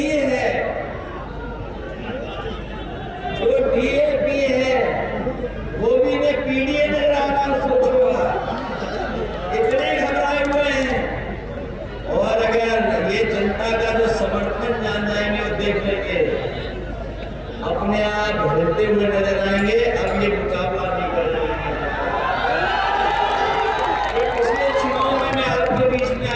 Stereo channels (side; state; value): both; identical; correlation 1.00